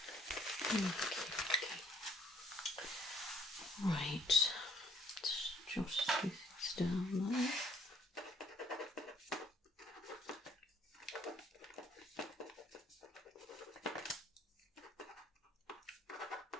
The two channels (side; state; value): both; normal; correlation 0.63